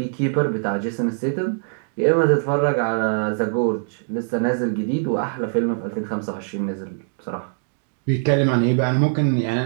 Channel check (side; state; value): left; silent; digital silence